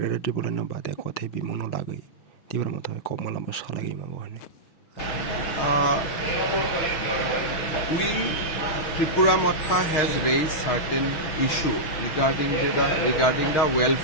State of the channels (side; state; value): right; late; 6.2 ms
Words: Tripura no bade kothe bimung no lagai Tripura mutha kokmalamba salagi mango hani We, Tripura Matha has raised certain issue regarding the